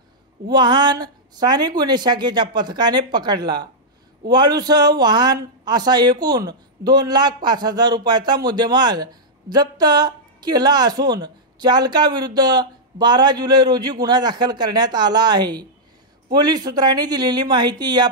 वाहन स्थानिक गुन्हे शाखेच्या पथकाने पकडला। वाळूसह वाहन असा एकूण 2,05,000 रुपयाचा मुद्देमाल जप्त केला असून चालकाविरुद्ध 12 जुलै रोजी गुन्हा दाखल करण्यात आला आहे। पोलीस सूत्रांनी दिलेली माहिती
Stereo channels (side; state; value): both; normal; correlation -0.08